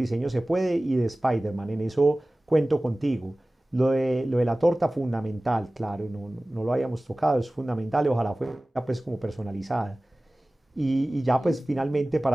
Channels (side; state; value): both; normal; correlation 0.98